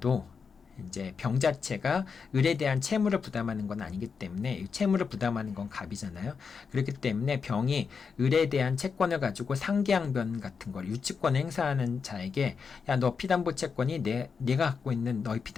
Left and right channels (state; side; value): quieter; right; 5.7 dB